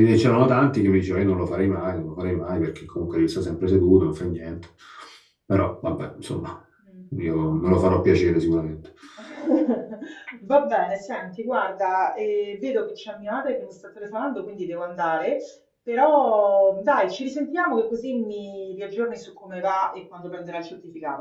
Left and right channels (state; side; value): identical; both; correlation 1.00